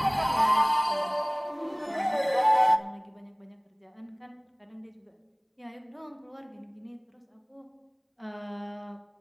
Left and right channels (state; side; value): identical; both; correlation 1.00